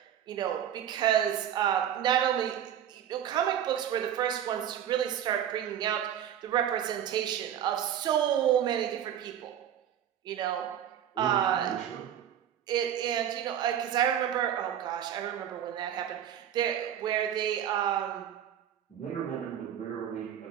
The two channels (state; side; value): quieter; left; 10.1 dB